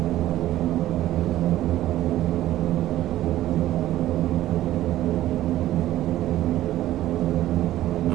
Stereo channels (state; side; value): quieter; left; 14.2 dB